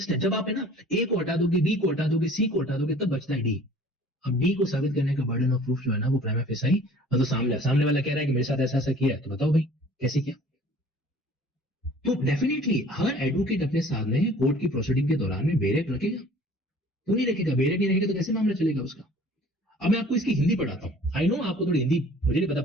जब आप है ना ए को हटा दोगे, बी को हटा दोगे, सी को हटा दोगे, तब बचता है डी। अब डी को साबित करने का बर्डन ऑफ प्रूफ जो है ना वो प्राइमा फेसाई, मतलब सामने वाला कह रहा है कि मेरे साथ ऐसा ऐसा किया है, तो बताओ भाई कैसे किया? तो डेफिनेटली हर एडवोकेट अपने सामने कोर्ट की प्रोसीडिंग के दौरान में बेरेक रखेगा, तो नहीं रखेगा, बेरेक नहीं रखेगा तो कैसे मामला चलेगा उसका? अब मैं आपको इसकी हिंदी पढ़ाता हूं। आई नो आपको थोड़ी हिंदी मुझे नहीं पता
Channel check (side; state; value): both; normal; correlation 0.50